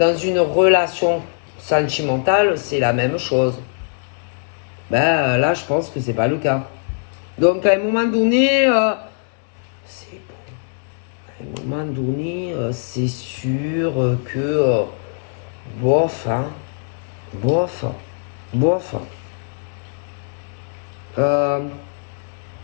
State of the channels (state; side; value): silent; right; digital silence